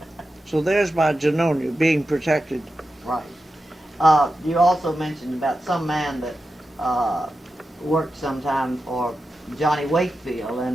So there's my Genonia being protected. Right. You also mentioned about some man that worked sometime for Johnny Wakefield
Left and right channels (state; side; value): normal; both; correlation 0.91